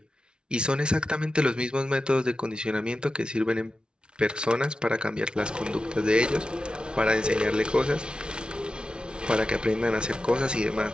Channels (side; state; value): left; late; 0.055 ms